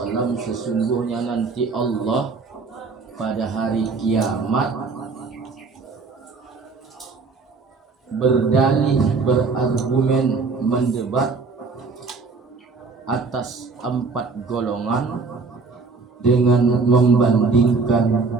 sesungguhnya nanti Allah pada hari kiamat berdalih, berargumen, mendebat atas 4 golongan dengan membandingkan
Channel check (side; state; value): left; quieter; 4.4 dB